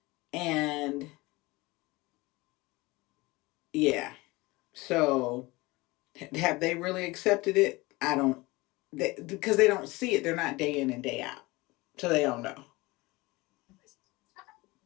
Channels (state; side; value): quieter; right; 22.2 dB